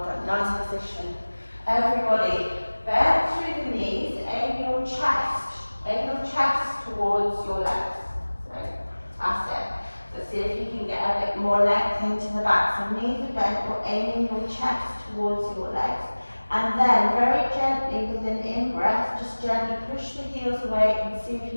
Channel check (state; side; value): inverted; both; correlation -1.00